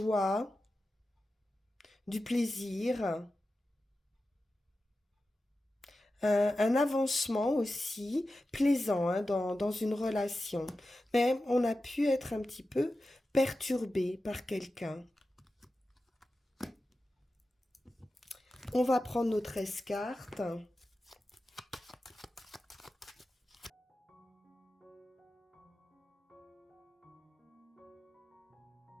du plaisir, un avancement aussi plaisant, hein, dans une relation. Mais on a pu être un petit peu perturbé par quelqu'un. On va prendre nos 13 cartes.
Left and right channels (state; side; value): normal; both; correlation 0.93